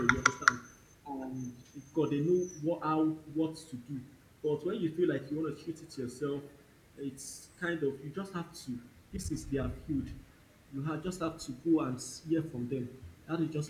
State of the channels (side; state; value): both; identical; correlation 1.00